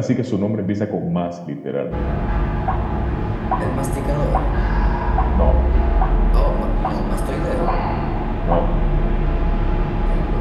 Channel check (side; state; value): both; identical; correlation 1.00